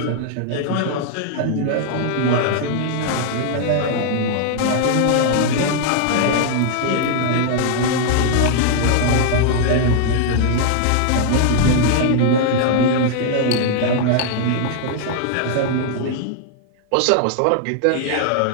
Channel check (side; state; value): both; different; correlation -0.01